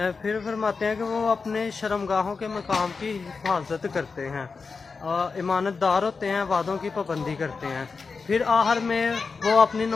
پھر فرماتے ہیں کہ وہ اپنے شرمگاہوں کے مقام کی حفاظت کرتے ہیں، امانت دار ہوتے ہیں، وعدوں کی پابندی کرتے ہیں۔ پھر آخر میں وہ اپنی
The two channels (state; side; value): quieter; right; 4.7 dB